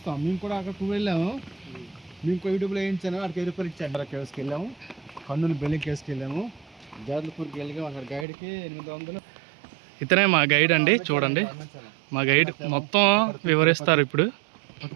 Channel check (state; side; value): drops out; left; at 8.2 s